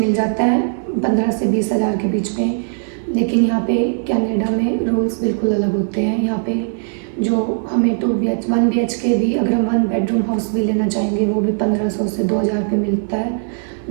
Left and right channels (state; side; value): silent; left; 61 dB below the other